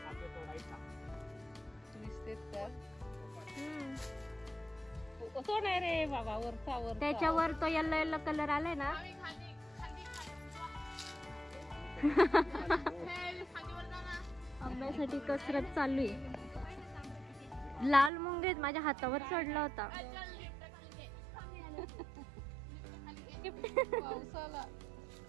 आपले तोडायचा. दिसतेत तर. हम्म. तो नाही रे बाबा, वरचा वर. त्याच्यावर तो येल्लो येल्लो कलर आलाय ना. आंब्यासाठी कसरत चालू आहे. लाल मुंगेत माझ्या हातावर चढला होता. पावसाला.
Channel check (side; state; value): left; drops out; at 18.1 s